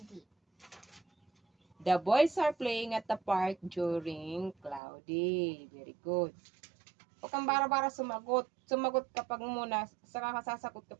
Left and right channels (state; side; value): drops out; left; at 4.8 s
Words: The boys are playing at the park during cloudy. Very good. Huwag kang bara-bara sumagot. Sumagot kapag muna, saka ka sasagot